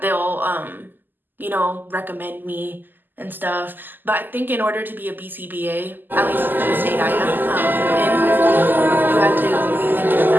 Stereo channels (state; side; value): late; left; 0.089 ms